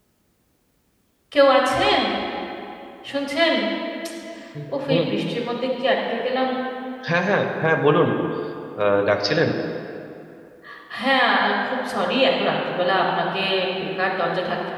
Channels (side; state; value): both; identical; correlation 1.00